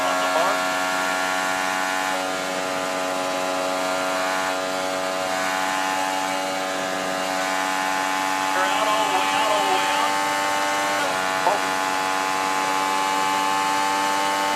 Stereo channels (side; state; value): both; identical; correlation 1.00